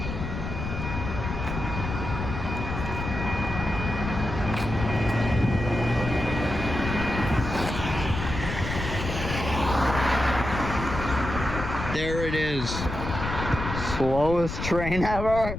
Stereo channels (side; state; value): left; noise; rumble, 5 dB below the sound